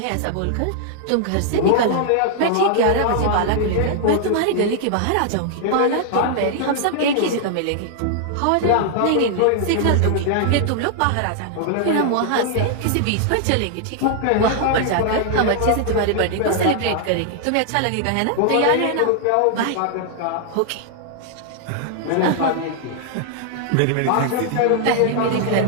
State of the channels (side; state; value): both; different; correlation -0.01